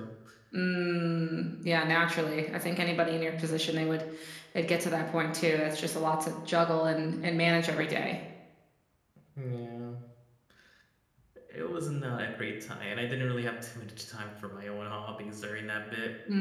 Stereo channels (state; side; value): identical; both; correlation 1.00